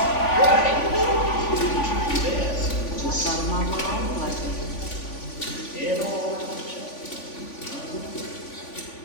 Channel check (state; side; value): late; right; 3.5 ms